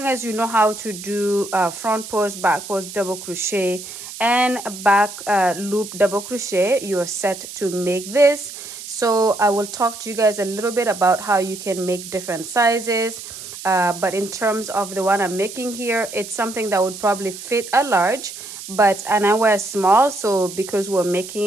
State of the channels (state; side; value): noise; right; hiss, 12 dB below the sound